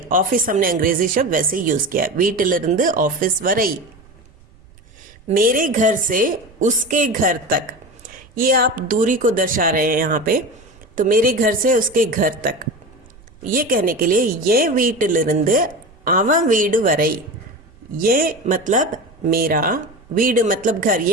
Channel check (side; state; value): right; noise; rumble, 26 dB below the sound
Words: ऑफिस हमने अंग्रेजी शब्द वैसे यूज किया, वीटिलिरिंद ऑफिस वरई। मेरे घर से उसके घर तक, ये आप दूरी को दर्शा रहे हैं यहाँ पे। तो मेरे घर से उसके घर तक, ये कहने के लिए ये வீட்டிலிருந்து அவன் வீடு வரை, ये मतलब मेरा, வீடு मतलब घर,